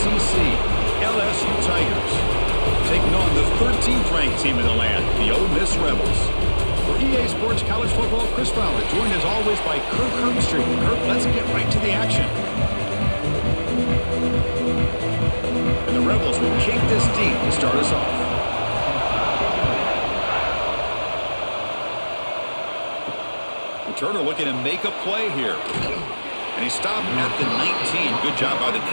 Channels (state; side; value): inverted; both; correlation -1.00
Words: LSU Tigers, taking on the 13th ranked team in the land, the Ole Miss Rebels. For EA Sports College Football, Chris Fowler, joined as always by Kirk Herbstreit. Kirk, let's get right to the action. And the Rebels will kick this deep to start us off. Turner looking to make a play here. And he stopped at the 19. Good job by the